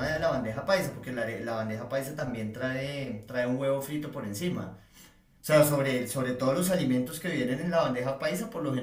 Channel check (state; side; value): identical; both; correlation 1.00